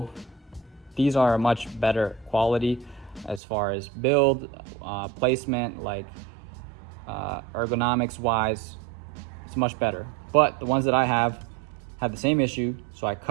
these are a much better quality as far as build, placement, like ergonomics wise, it's much better. But the ones that I have had the same issue, so I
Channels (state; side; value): drops out; left; at 3.4 s